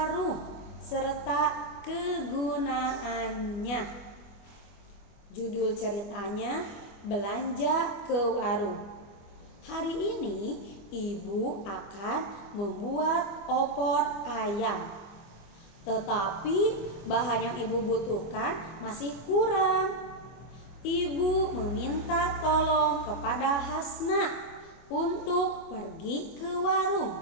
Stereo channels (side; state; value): right; late; 25 ms